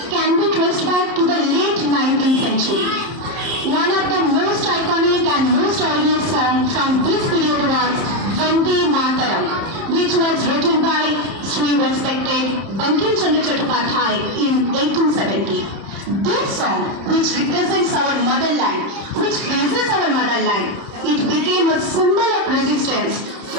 can be traced back to the late 19th century. One of the most iconic and most audience song from this period was Vande Mataram, which was written by Sri respected Bankim Chandra Chattopadhyay in 1870. This song, which represents our motherland, which praises our motherland, it became a symbol of resistance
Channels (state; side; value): late; left; 30 ms